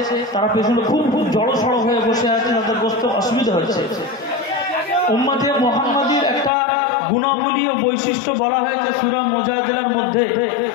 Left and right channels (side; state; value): right; drops out; at 6.5 s